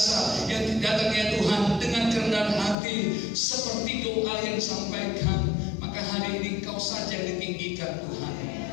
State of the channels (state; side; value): drops out; right; at 2.8 s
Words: yang datang ya Tuhan dengan kerendahan hati seperti doa yang disampaikan. Maka hari ini Kau saja yang ditinggikan Tuhan.